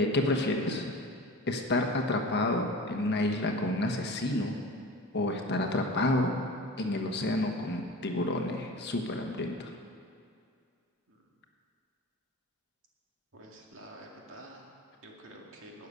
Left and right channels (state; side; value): normal; both; correlation 0.36